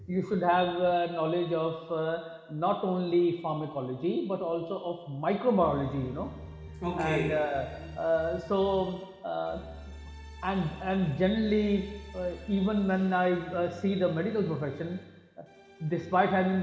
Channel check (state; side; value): identical; both; correlation 1.00